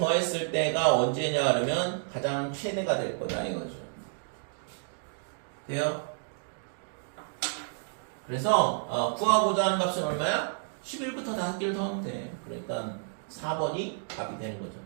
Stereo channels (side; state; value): left; silent; digital silence